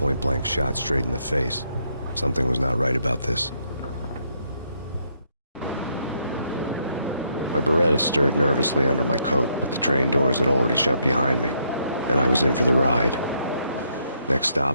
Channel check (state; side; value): inverted; both; correlation -0.74